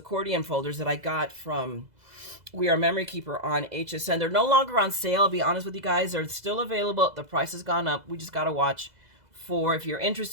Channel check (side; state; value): left; late; 2.0 ms